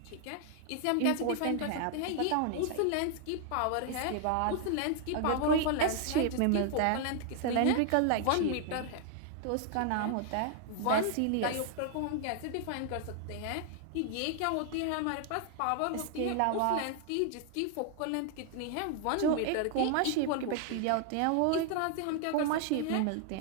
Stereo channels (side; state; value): both; different; correlation 0.00